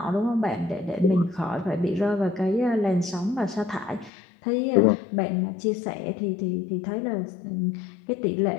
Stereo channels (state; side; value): drops out; right; at 4.1 s